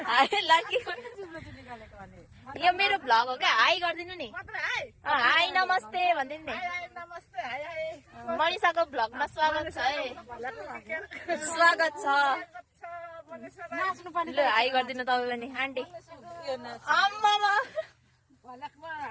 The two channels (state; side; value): identical; both; correlation 1.00